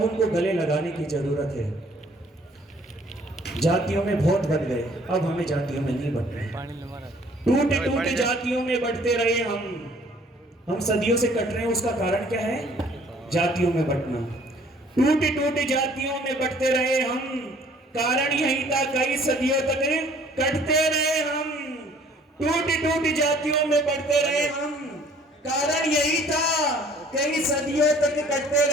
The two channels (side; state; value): both; normal; correlation 0.57